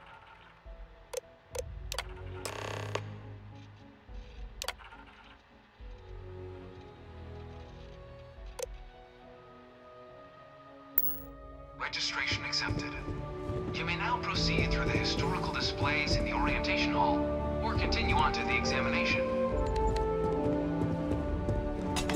Registration accepted. You may now proceed through the historical displays in the orientation hall, or continue on to the examination.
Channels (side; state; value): both; identical; correlation 1.00